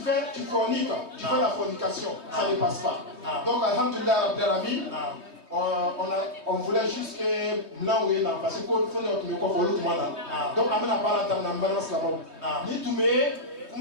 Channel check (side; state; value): left; late; 3.2 ms